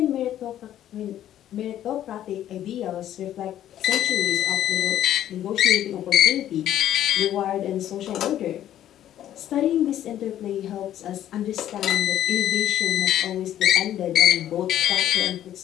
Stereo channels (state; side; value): quieter; right; 11.7 dB